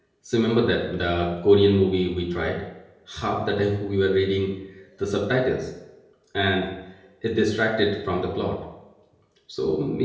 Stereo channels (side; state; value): both; identical; correlation 1.00